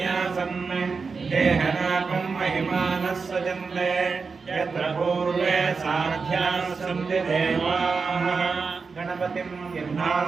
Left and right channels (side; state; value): left; quieter; 4.8 dB